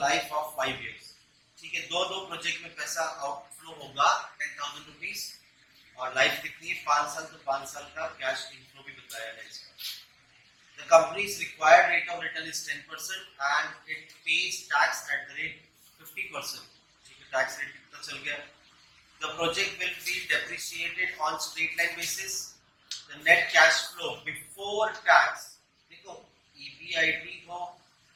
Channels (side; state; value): both; identical; correlation 1.00